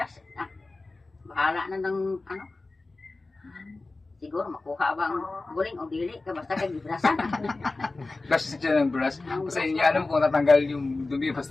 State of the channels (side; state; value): right; quieter; 3.4 dB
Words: Bahala na ng ano. Siguro makuha ba ang guling o dili ka basta kay gibrasan. Brush siya ng brush. Kasi hindi alam kung natanggal yung dumi